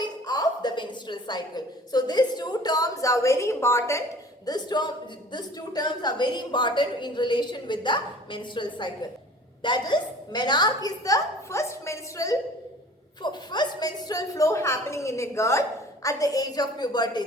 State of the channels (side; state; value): both; normal; correlation 0.47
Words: of the menstrual cycle. So these two terms are very important. These two terms are very important in relation with the menstrual cycle. That is, menarche is the first menstrual flow happening in a girl at the age of puberty.